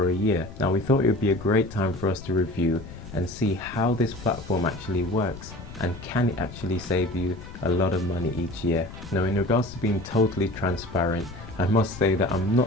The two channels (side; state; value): left; noise; rumble, 14 dB below the sound